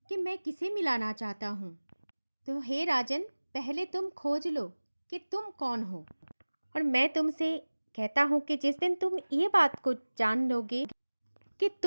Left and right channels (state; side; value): inverted; both; correlation -1.00